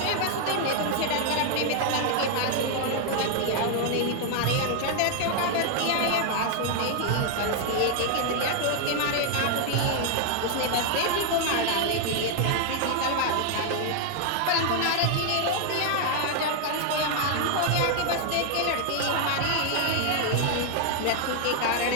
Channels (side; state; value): both; different; correlation 0.00